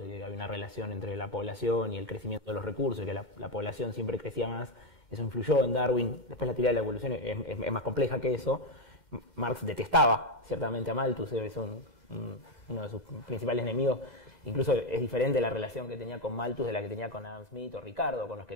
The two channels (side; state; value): left; late; 11 ms